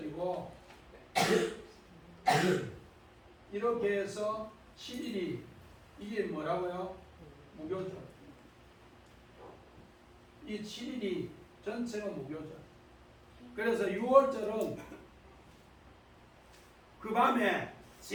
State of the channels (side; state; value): both; identical; correlation 1.00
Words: 이렇게 해서 7일이 이게 뭐라고요? 무교절. 이 7일이 전체가 무교절. 그래서 6월절은 그 밤에